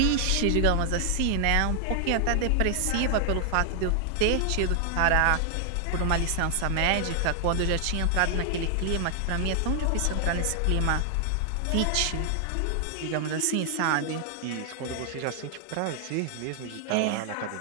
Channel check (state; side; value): different; both; correlation 0.00